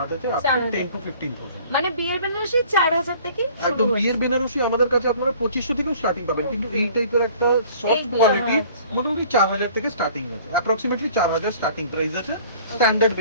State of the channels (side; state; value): both; inverted; correlation -0.51